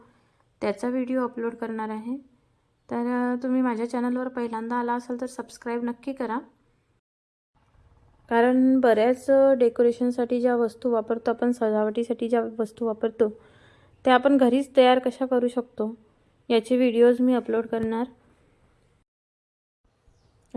त्याचा व्हिडिओ अपलोड करणार आहे। तर तुम्ही माझ्या चॅनलवर पहिल्यांदा आला असाल तर सबस्क्राईब नक्की करा, कारण बऱ्याच डेकोरेशनसाठी ज्या वस्तू वापरतो आपण, सजावटीसाठी ज्या वस्तू वापरतो त्या आपण घरीच तयार कशा करू शकतो याचे व्हिडिओज मी अपलोड करणार।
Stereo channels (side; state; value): both; identical; correlation 1.00